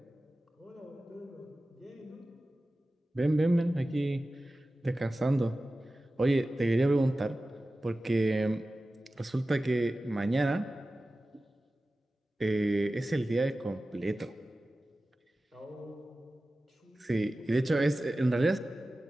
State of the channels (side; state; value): both; normal; correlation 0.95